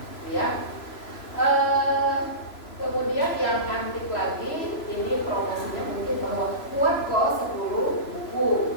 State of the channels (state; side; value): late; right; 3.0 ms